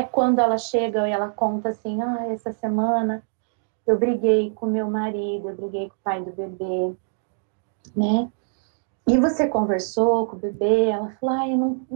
Quando ela chega e ela conta assim, essa semana eu briguei com meu marido, eu briguei com o pai do bebê, né? E você conversou com o bebê? Ela falou, eu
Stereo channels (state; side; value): silent; left; digital silence